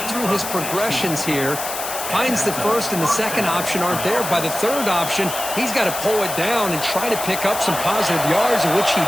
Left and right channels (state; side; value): noise; left; hiss, 6 dB below the sound